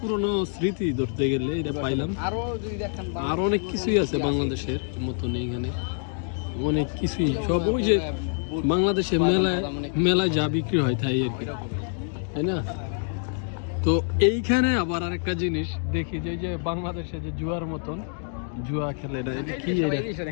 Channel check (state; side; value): silent; right; 61 dB below the other